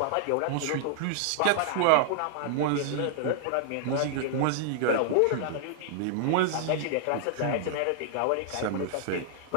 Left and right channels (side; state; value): both; different; correlation -0.01